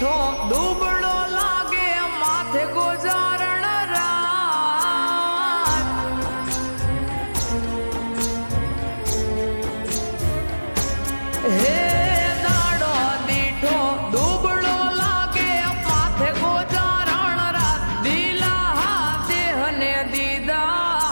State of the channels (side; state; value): both; inverted; correlation -1.00